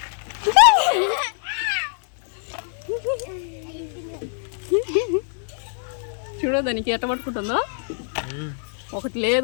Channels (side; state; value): right; silent; 63 dB below the other